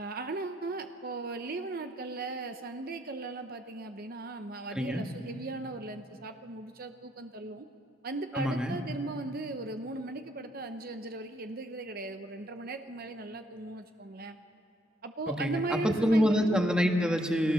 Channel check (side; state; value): both; normal; correlation 0.71